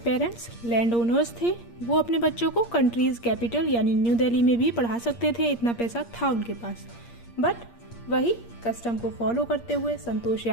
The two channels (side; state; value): right; late; 8.6 ms